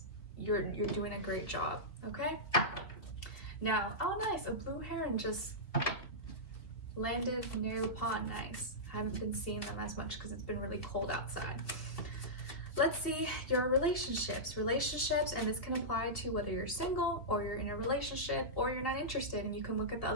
you're doing a great job. Okay. Now, oh nice, a blue heron just landed near the pond. Nice. I haven't been seeing them as much because it's been really cold outside. let's see your relationships, and this can apply to whether you're single or you're in a relationship or you're not interested, and you can look at the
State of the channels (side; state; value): right; late; 2.6 ms